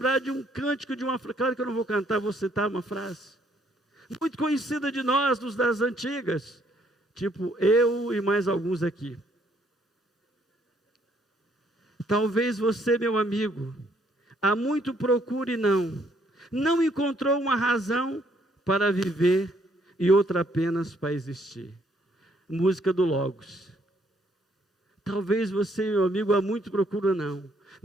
de um cântico, de uma frase, claro que eu não vou cantar, vou citar uma frase, muito conhecida de nós, dos das antigas, tipo eu e mais alguns aqui. Talvez você, meu amigo, há muito procure e não encontrou uma razão para viver e outra apenas para existir. Música do Logos. Talvez você, meu amigo, há muito procura não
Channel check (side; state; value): both; normal; correlation 0.68